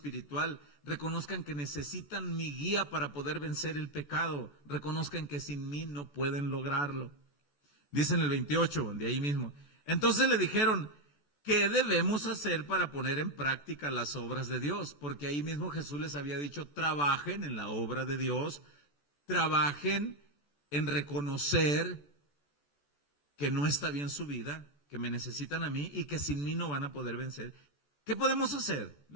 reconozcan que necesitan mi guía para poder vencer el pecado, reconozcan que sin mí no pueden lograrlo. Dice en el 28, de ahí mismo: entonces le dijeron: ¿qué debemos hacer para poner en práctica las obras de Dios? Porque ahí mismo Jesús les había dicho: trabajen en la obra de Dios, trabajen en reconocer que no está bien su vida, que me necesitan a mí y que sin mí no van a poder vencer. ¿Qué podemos hacer?,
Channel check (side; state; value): right; late; 14 ms